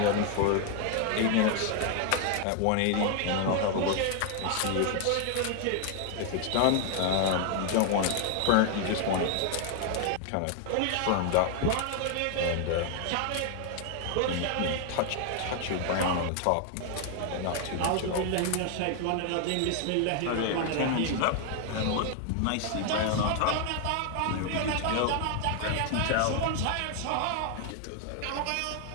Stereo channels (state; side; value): different; both; correlation 0.00